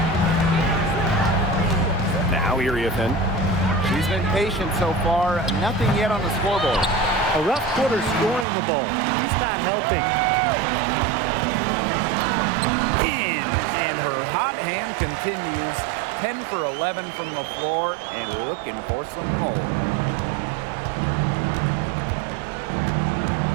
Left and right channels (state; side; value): drops out; left; at 8.5 s